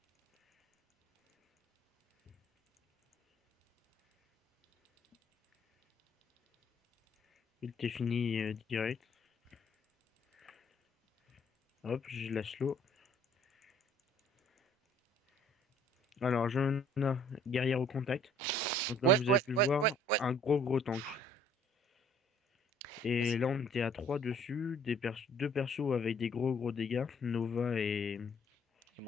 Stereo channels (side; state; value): both; normal; correlation 0.58